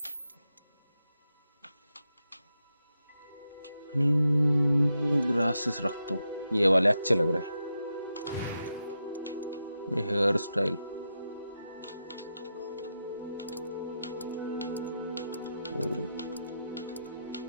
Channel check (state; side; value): inverted; both; correlation -0.87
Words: ग्लासेस रखता हूँ। ये वाले अच्छे लग रहे हैं। हेयर स्टाइल